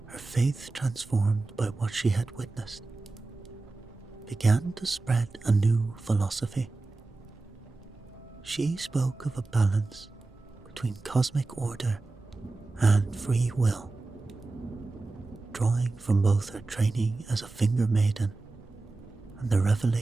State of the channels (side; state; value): left; quieter; 3.4 dB